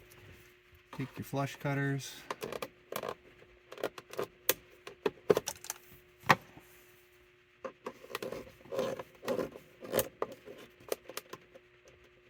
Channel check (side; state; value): both; identical; correlation 1.00